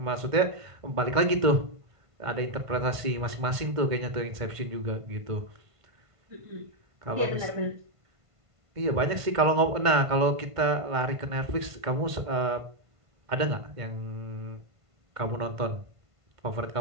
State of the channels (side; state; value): left; late; 1.5 ms